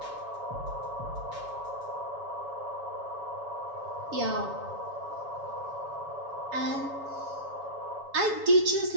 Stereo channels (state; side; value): late; left; 7.1 ms